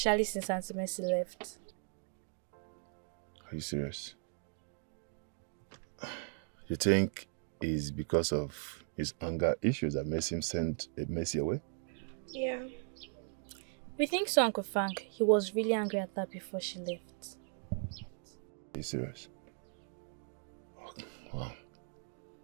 since Auntie Mercy left. Are you serious? You think it's because of his anger issues that makes him send Mercy away? Yeah. We think so, Uncle Frank. He was really angry at her before she left. Are you serious? Oh, wow.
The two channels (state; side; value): silent; left; 53 dB below the other